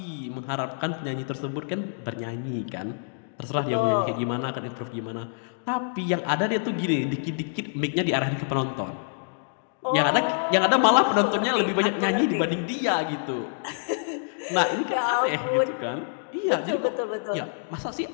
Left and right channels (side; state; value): right; silent; digital silence